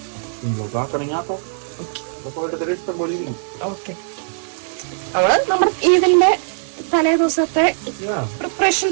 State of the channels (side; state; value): left; silent; digital silence